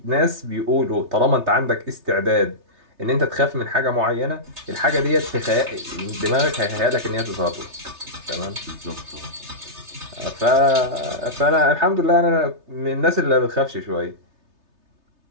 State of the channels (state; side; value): late; left; 3.3 ms